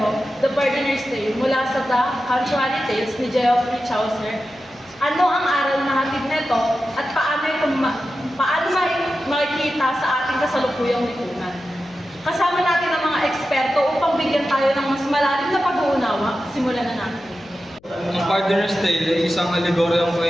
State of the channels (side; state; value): left; noise; hum, 29 dB below the sound